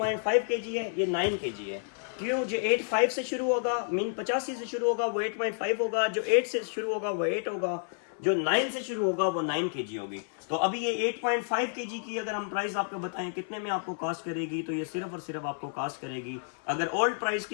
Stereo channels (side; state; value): right; silent; 58 dB below the other